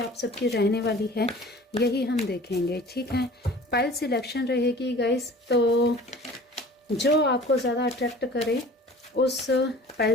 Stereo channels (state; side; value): normal; both; correlation 0.44